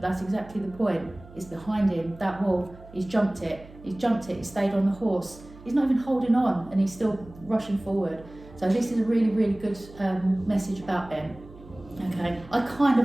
that's exactly the point. It's behind him, that wall. He's jumped it, he stayed on the horse. He's not even holding on, and he's still rushing forward. So this is a really, really good message about Ben. Okay, I kind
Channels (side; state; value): right; noise; hum, 20 dB below the sound